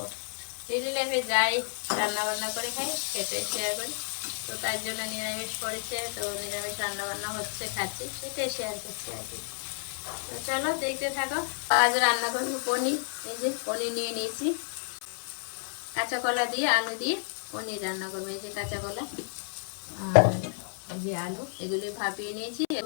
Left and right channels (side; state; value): right; silent; 57 dB below the other